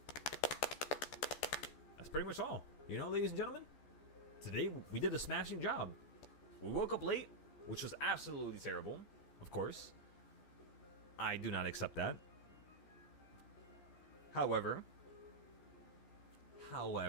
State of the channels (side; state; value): right; late; 14 ms